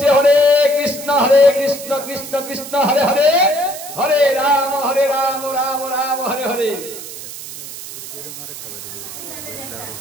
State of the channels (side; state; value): right; noise; hiss, 11 dB below the sound